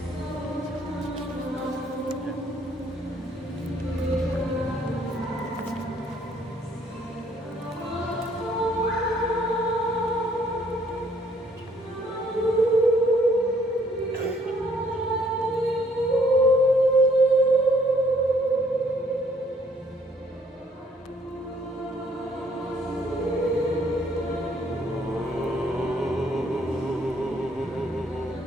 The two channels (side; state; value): both; normal; correlation 0.64